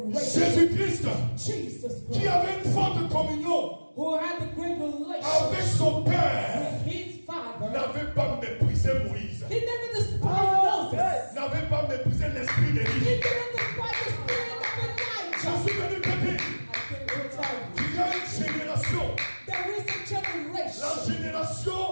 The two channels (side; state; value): both; inverted; correlation -1.00